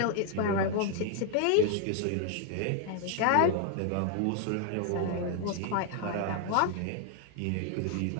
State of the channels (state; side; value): different; both; correlation 0.00